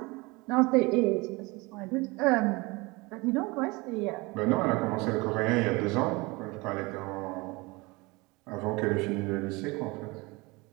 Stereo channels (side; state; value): left; quieter; 24.6 dB